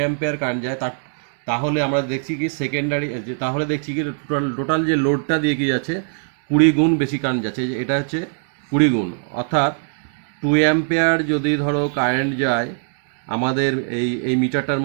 কারেন্ট যায়, তাহলে আমরা দেখছি কি টোটাল যে লোডটা দিয়ে কি যাচ্ছে, 20 গুণ বেশি কারেন্ট যাচ্ছে। এটা হচ্ছে 20 গুণ। অর্থাৎ 2 অ্যাম্পিয়ার যদি ধরো কারেন্ট যায় আমাদের এই মিটারটার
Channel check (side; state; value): left; silent; 65 dB below the other